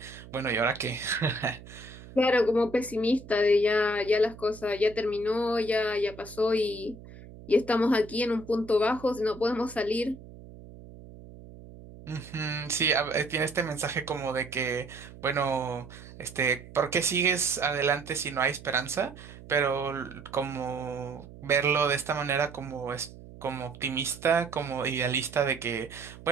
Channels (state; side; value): noise; right; hum, 17 dB below the sound